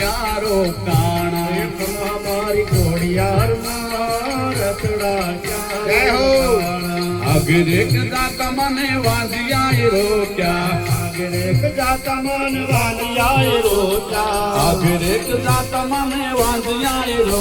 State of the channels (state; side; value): identical; both; correlation 1.00